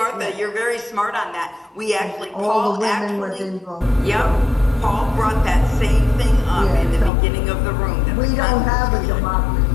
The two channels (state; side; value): drops out; right; at 7.1 s